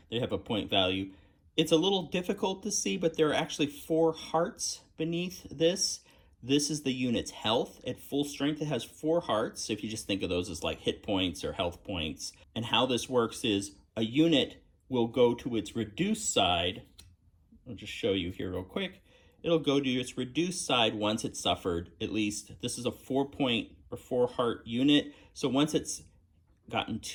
they have a point value. It's a little difficult to see, but there are actually 4 hearts beneath this. This is the unit's health. At full strength, it has 4 hearts. So if you just think of those as like hit points or health points. And how this works is a unit will go to its reduced side. I'll just show you here real quick. It'll go to its reduced side once it's suffered, at least. This is a 4-point or 4-heart unit. So once it's gotten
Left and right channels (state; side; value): identical; both; correlation 1.00